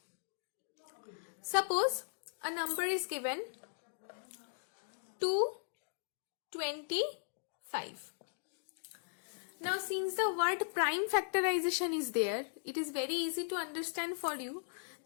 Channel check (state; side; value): silent; right; digital silence